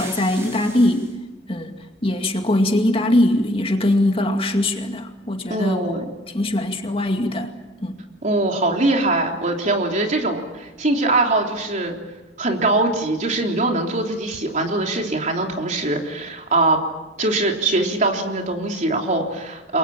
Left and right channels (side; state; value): both; normal; correlation 0.36